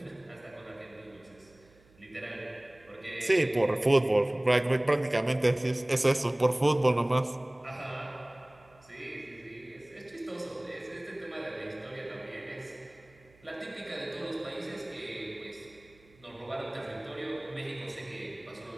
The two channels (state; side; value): noise; right; hum, 29 dB below the sound